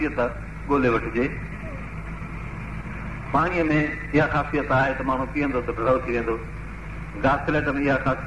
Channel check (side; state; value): both; identical; correlation 1.00